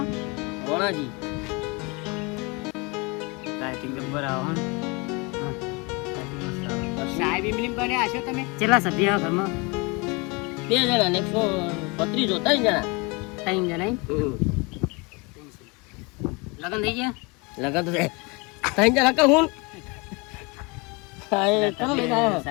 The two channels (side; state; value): right; quieter; 28.5 dB